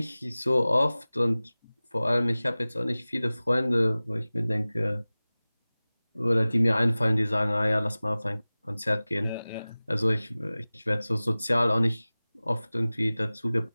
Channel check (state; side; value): inverted; both; correlation -0.98